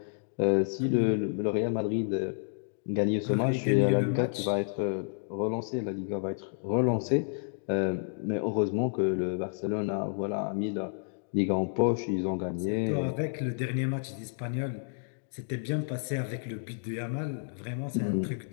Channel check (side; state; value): right; silent; digital silence